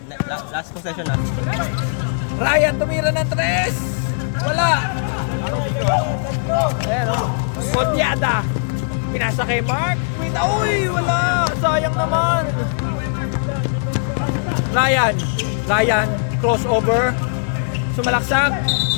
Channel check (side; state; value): right; silent; digital silence